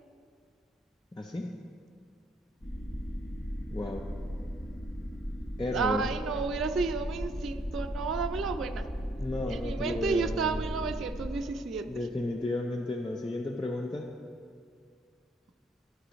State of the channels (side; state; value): both; normal; correlation 0.68